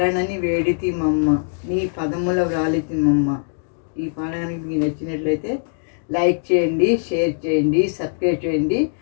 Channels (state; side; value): silent; right; digital silence